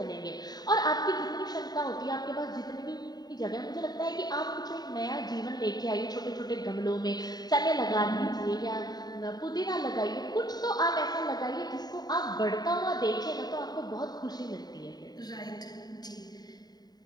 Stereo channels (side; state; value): right; late; 0.20 ms